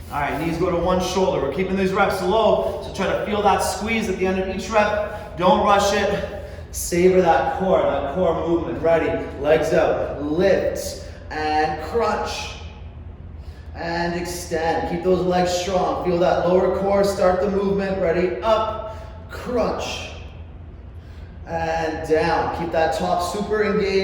All right, knees go to one shoulder. We're keeping these reps low, so try to feel that squeeze at the end of each rep. Don't rush it. Savor that core movement. Ready? Legs out, lift, and crunch, and extend. Keep those legs strong. Feel that lower core, start the movement. Ready? Up, crunch, and down. Keep that top super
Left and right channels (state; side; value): identical; both; correlation 1.00